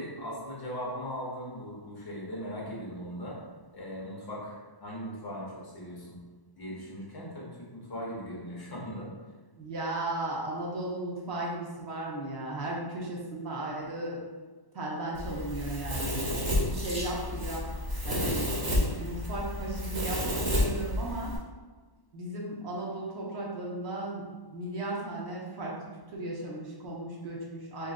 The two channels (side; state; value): right; late; 1.0 ms